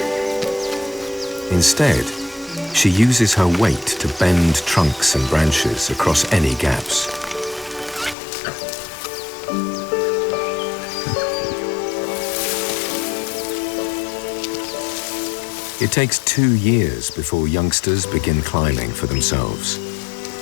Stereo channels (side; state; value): right; drops out; at 8.2 s